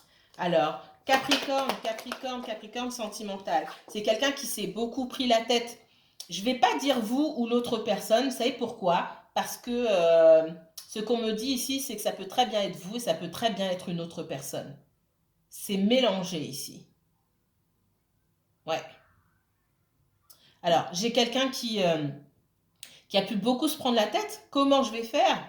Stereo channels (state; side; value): identical; both; correlation 1.00